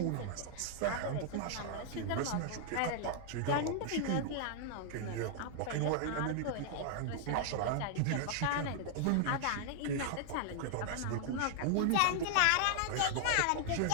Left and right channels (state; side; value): different; both; correlation 0.00